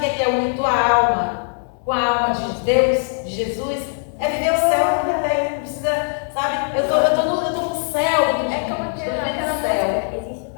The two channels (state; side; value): silent; right; 65 dB below the other